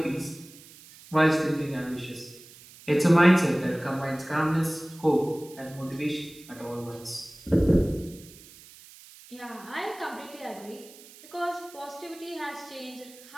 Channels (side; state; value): right; noise; hiss, 21 dB below the sound